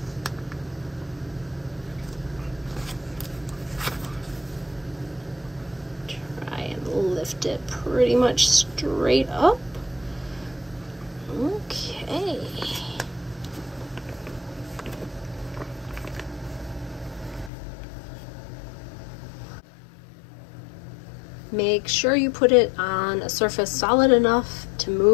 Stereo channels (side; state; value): right; drops out; at 17.5 s